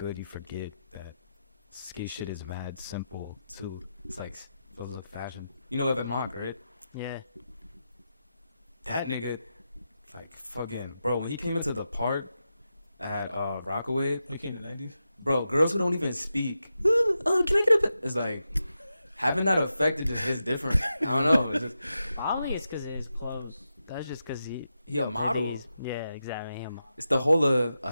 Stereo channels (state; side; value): inverted; both; correlation -0.89